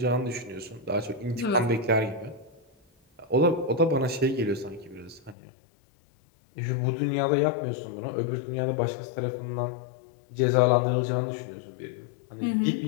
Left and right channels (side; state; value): right; drops out; at 5.4 s